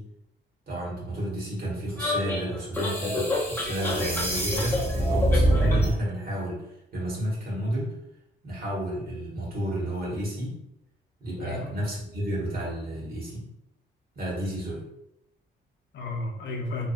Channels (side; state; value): both; normal; correlation 0.67